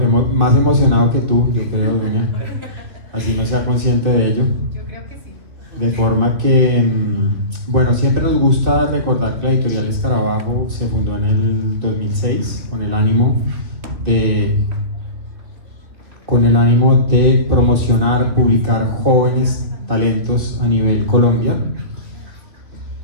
más emocionado que tú, yo creo, Dunia. Así no sea consciente de ello. Yo creo que sí. De forma que, bueno, siempre nos gusta recordar que la editorial Escarabajo se fundó en el 2006 con el ánimo de promocionar, publicar jóvenes talentos a nivel Colombia.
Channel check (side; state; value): left; late; 3.1 ms